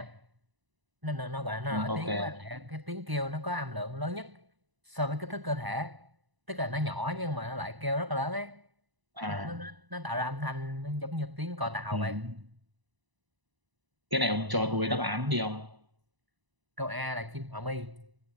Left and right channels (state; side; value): late; left; 1.0 ms